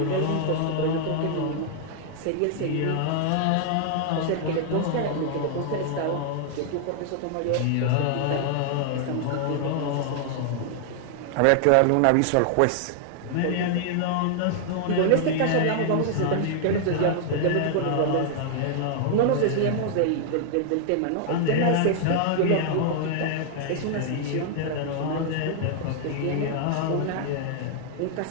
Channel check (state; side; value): different; both; correlation -0.01